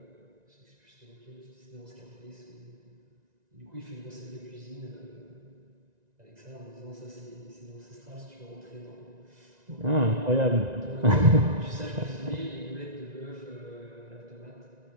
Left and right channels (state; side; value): late; left; 1.9 ms